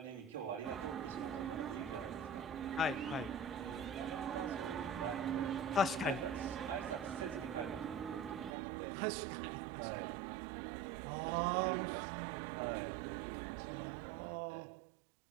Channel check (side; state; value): left; drops out; at 8.6 s